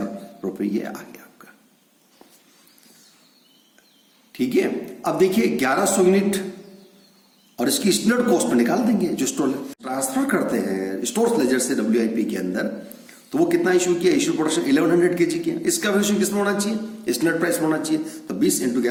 रुपए ये आ गया आपका। ठीक है, अब देखिए 1100 यूनिट और इसकी स्टैंडर्ड कॉस्ट में निकाल देंगे, जो स्टोर ट्रांसफर करते हैं स्टोर्स लेजर से WIP के अंदर, तो वो कितना इशू किया, इशू प्रोडक्शन 1100 kg किया, इसका वैल्यूएशन किसमें होना चाहिए, स्टैंडर्ड प्राइस होना चाहिए, तो 20 इंटू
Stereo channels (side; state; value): both; identical; correlation 1.00